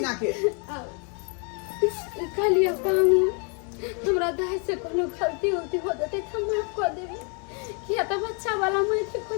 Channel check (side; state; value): right; quieter; 38.1 dB